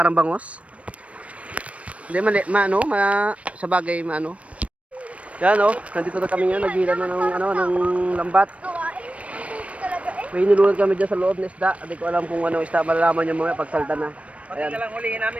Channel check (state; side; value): late; left; 0.064 ms